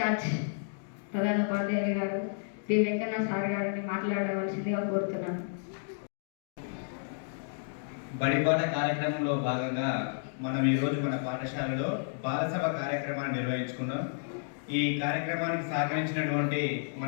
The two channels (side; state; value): right; silent; digital silence